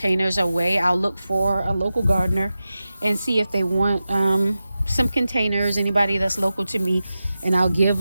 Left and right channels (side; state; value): both; inverted; correlation -0.93